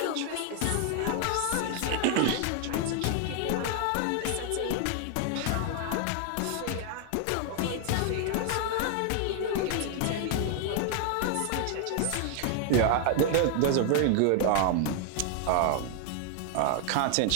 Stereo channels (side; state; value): both; different; correlation 0.00